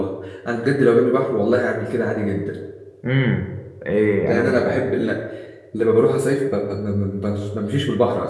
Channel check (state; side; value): identical; both; correlation 1.00